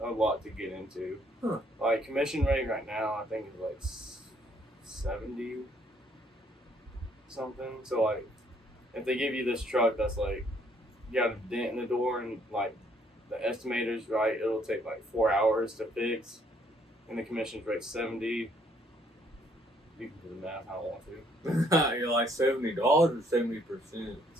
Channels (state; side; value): normal; both; correlation 0.66